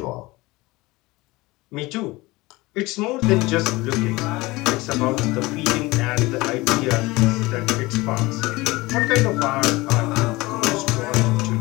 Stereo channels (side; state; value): right; quieter; 21.3 dB